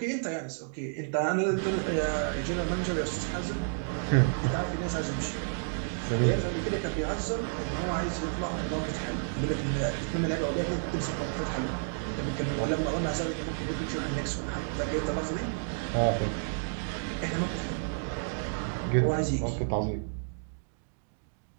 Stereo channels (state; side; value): silent; left; digital silence